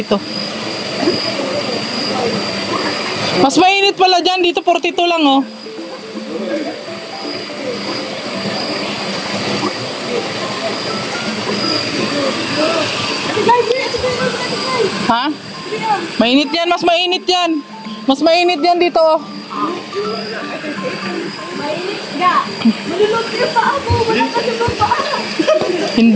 Mas mainit pala dyan, dito 42 lang oh. Ha? Mainit yan, mas mainit yan. Mas mainit yan dito oh. Malulot yung paa mo. Wala ka yung paa.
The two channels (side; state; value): both; identical; correlation 1.00